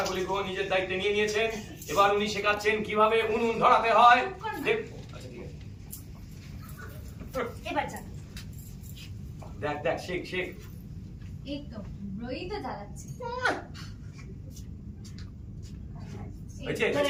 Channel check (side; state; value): both; identical; correlation 1.00